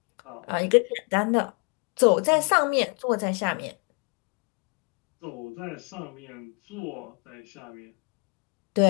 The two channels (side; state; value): right; quieter; 35.5 dB